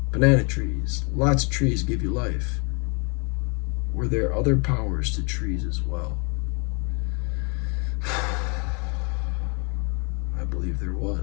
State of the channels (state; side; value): quieter; right; 34.0 dB